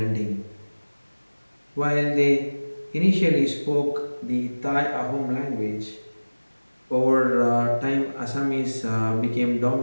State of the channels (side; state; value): both; inverted; correlation -1.00